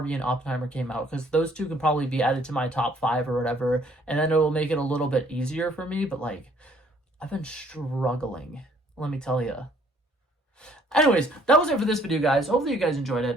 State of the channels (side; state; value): both; normal; correlation 0.62